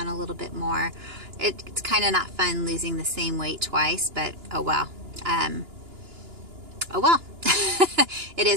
a little bit more. It's kind of not fun losing the same weight twice, but oh well. Oh well. It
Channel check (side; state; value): left; late; 2.9 ms